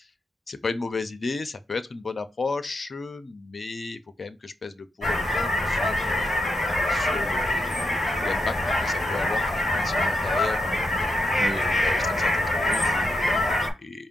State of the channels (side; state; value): both; normal; correlation 0.83